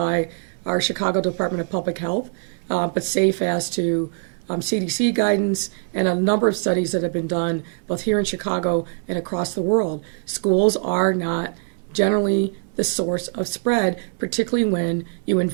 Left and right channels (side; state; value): left; silent; digital silence